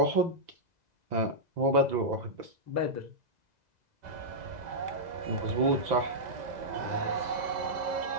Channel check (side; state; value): left; late; 2.0 ms